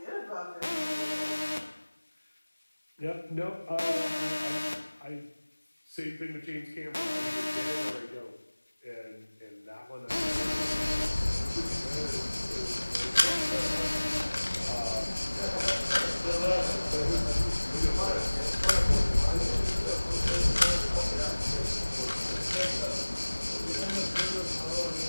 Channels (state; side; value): inverted; both; correlation -1.00